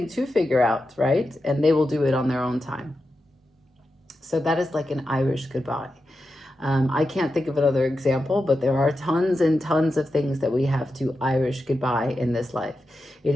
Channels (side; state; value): both; normal; correlation 0.89